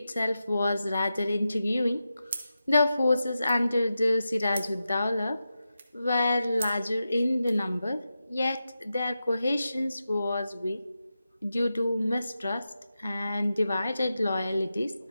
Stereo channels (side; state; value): both; inverted; correlation -0.91